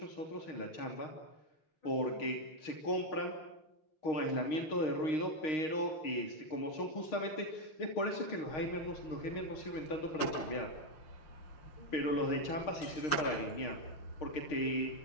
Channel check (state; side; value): late; right; 6.4 ms